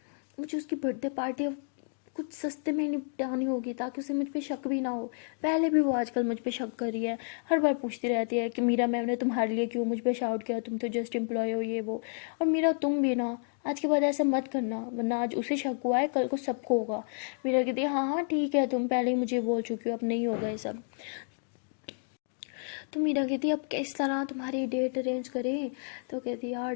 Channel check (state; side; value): silent; right; 57 dB below the other